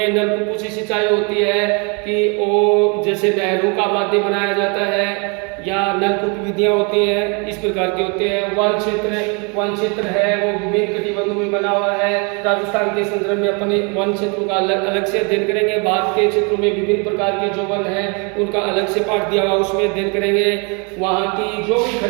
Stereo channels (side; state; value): left; quieter; 33.3 dB